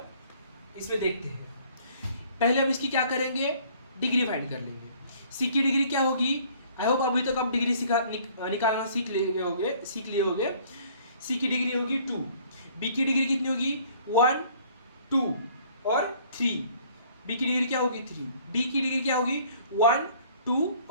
इसमें देखते हैं। पहले हम इसकी क्या करेंगे, डिग्री फाइंड कर लेंगे। सी की डिग्री क्या होगी, आई होप अभी तक आप डिग्री निकालना सीख लिए होगे। सी की डिग्री होगी 2, बी की डिग्री कितनी होगी 1, 2 और 3, बी की डिग्री क्या होगी 3, डी की डिग्री क्या होगी 1, 2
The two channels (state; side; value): inverted; both; correlation -0.57